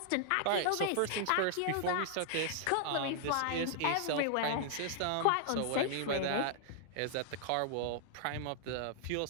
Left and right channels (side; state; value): both; different; correlation -0.01